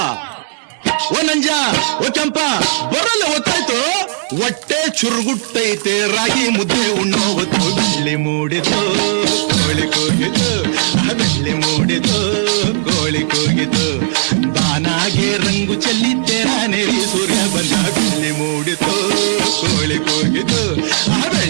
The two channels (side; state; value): left; silent; digital silence